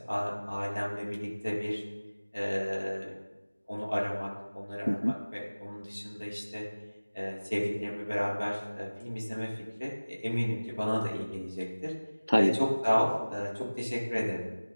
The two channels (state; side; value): inverted; both; correlation -1.00